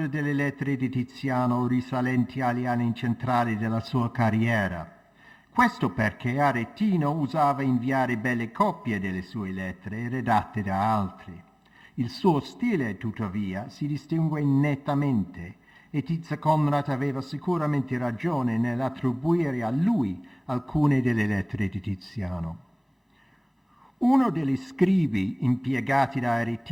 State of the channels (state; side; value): identical; both; correlation 1.00